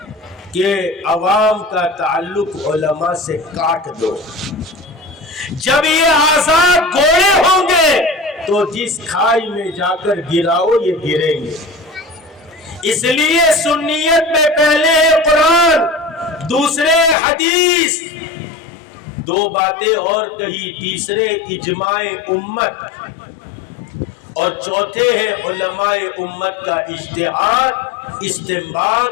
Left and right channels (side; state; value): right; drops out; at 17.2 s